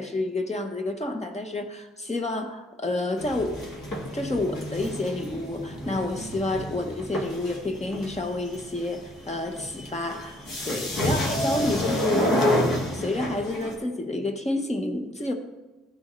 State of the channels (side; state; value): both; normal; correlation 0.65